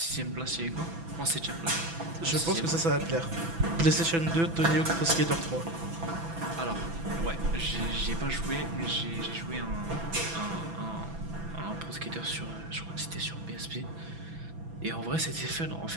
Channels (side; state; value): left; late; 6.0 ms